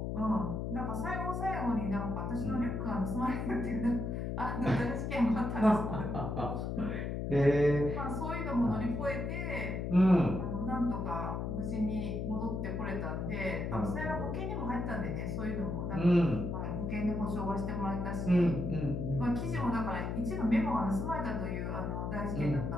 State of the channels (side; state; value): left; noise; hum, 2 dB below the sound